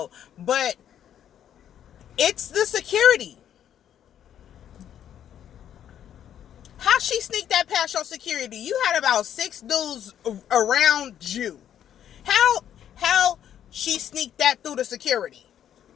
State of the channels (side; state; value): right; quieter; 10.0 dB